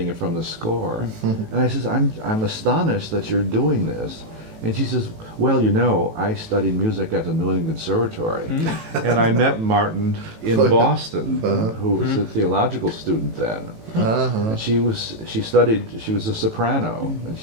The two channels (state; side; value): late; left; 18 ms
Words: it from the score. And I says, I'm astonished that you're doing this. And she says, well, I studied music at the New England Conservatory. And I met Martin in Boston, who was a theological student then. And she was a soprano, and